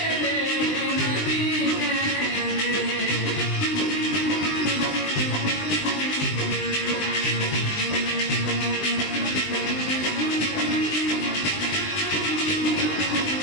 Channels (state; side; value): late; right; 20 ms